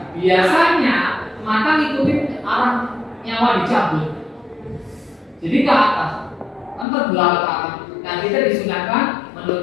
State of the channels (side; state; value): right; drops out; at 6.9 s